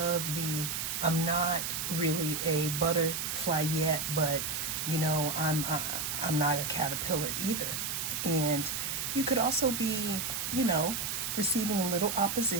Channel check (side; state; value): right; noise; hiss, 2 dB below the sound